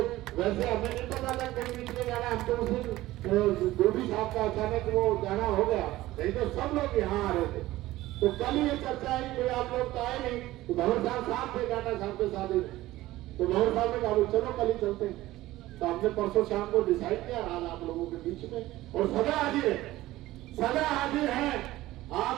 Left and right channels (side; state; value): left; quieter; 16.7 dB